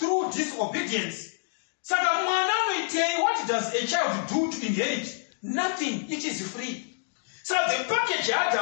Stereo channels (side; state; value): right; silent; digital silence